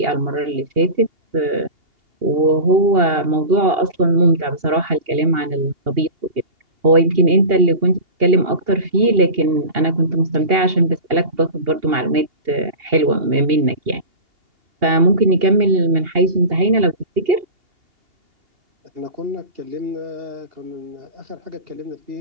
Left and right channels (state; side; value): late; left; 2.8 ms